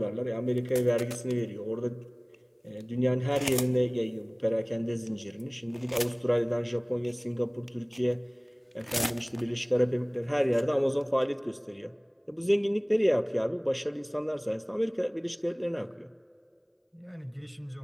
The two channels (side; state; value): both; identical; correlation 1.00